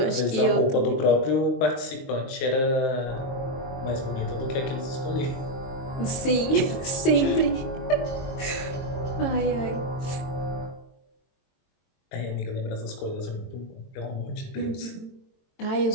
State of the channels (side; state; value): right; late; 22 ms